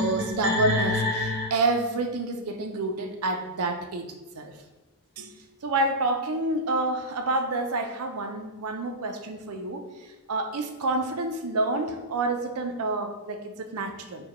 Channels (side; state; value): both; normal; correlation -0.12